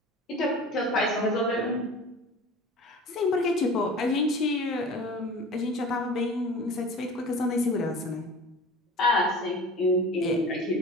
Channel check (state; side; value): normal; both; correlation 0.38